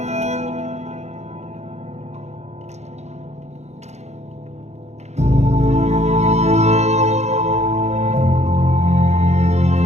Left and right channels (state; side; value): late; left; 0.32 ms